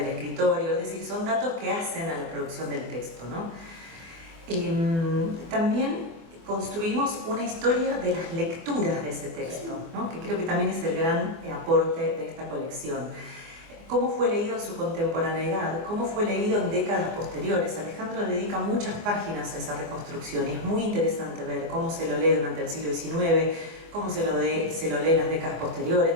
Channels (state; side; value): late; left; 24 ms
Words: escritorio, es decir, son datos que hacen a la producción del texto, ¿no? También construimos una historia de las lecturas de ese texto, ¿no? Que creo que también es el gran aporte de esta colección. ¿Cómo fue leído en su contemporaneidad? ¿Cómo fue leído en décadas posteriores? Alejandro dedica muchas páginas a esa reconstrucción y es muy interesante ver cómo se lo lee durante el siglo XIX, cómo se lo lee en las décadas